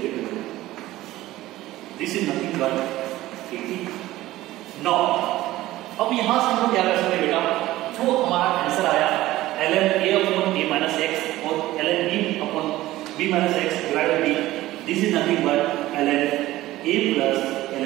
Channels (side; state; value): left; quieter; 16.3 dB